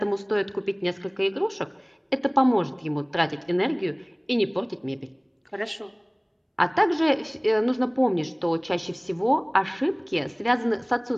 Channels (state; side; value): identical; both; correlation 1.00